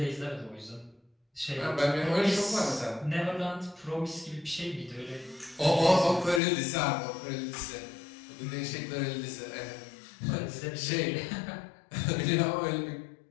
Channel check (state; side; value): drops out; right; at 6.4 s